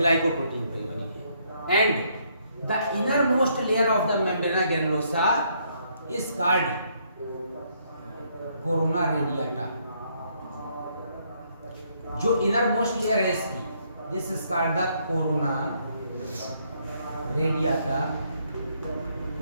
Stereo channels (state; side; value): inverted; both; correlation -0.71